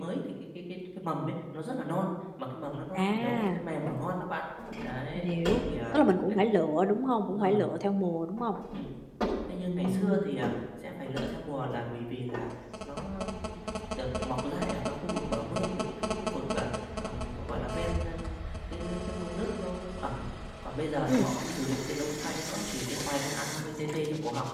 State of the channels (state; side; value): identical; both; correlation 1.00